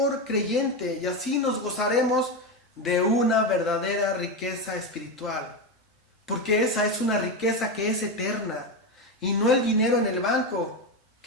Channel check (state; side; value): normal; both; correlation 0.13